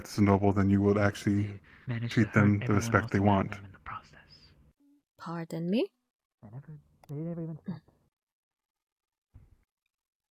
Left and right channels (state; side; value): identical; both; correlation 1.00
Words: as a noble, then you will actually treat them the respect they want. Pardon me?